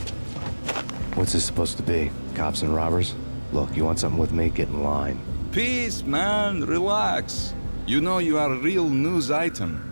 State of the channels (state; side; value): inverted; both; correlation -1.00